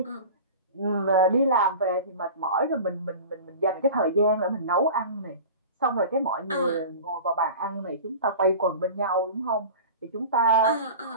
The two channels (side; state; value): both; inverted; correlation -0.36